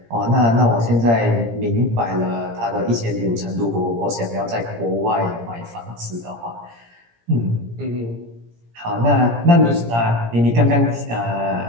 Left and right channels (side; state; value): left; late; 17 ms